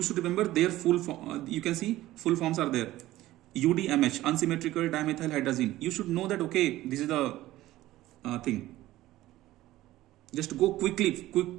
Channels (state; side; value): quieter; left; 15.9 dB